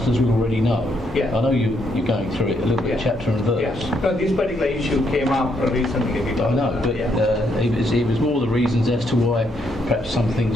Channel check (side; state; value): both; normal; correlation 0.75